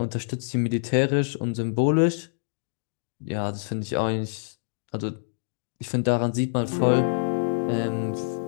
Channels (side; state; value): right; silent; digital silence